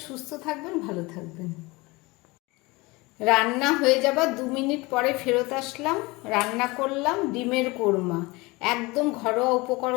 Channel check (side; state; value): right; quieter; 23.7 dB